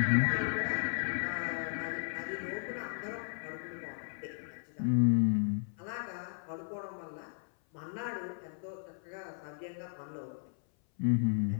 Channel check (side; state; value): right; silent; 54 dB below the other